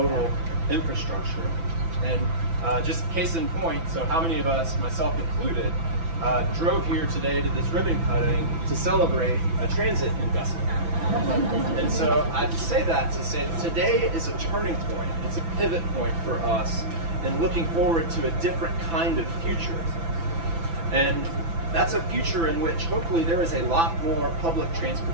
infrastructure. And just case in point, so how many of us, myself included, drove here today to this ribbon cutting to celebrate a transit investment. And so I say that to say that today is a turning point. It's a pivot point for us in looking forward to a different kind of future. And that's a future in which hopefully there is a lot more public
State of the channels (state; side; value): late; left; 6.0 ms